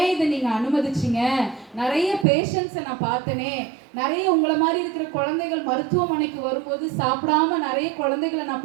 இதை நீங்கள் அனுமதிச்சிங்க, நிறைய பேஷண்ட்ஸை நான் பார்த்தனே, நிறைய உங்களை மாதிரி இருக்கிற குழந்தைகள் மருத்துவமனைக்கு வரும்போது சாப்பிடாம நிறைய குழந்தைகளை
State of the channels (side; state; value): left; drops out; at 2.2 s